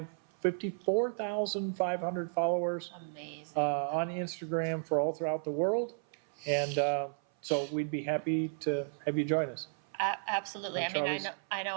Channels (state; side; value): silent; left; 55 dB below the other